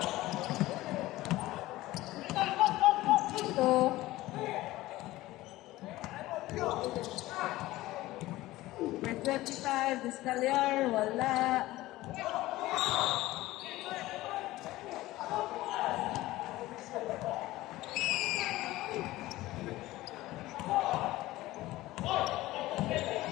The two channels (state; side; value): quieter; right; 17.4 dB